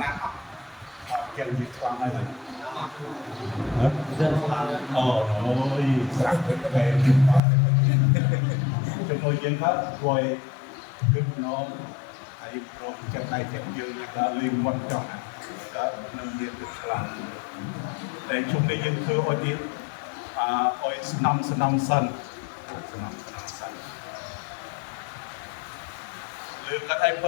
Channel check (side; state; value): right; drops out; at 7.4 s